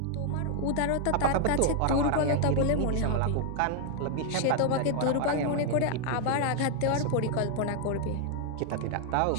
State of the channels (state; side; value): different; both; correlation 0.00